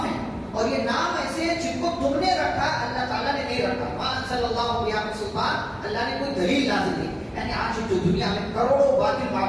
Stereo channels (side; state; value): both; identical; correlation 1.00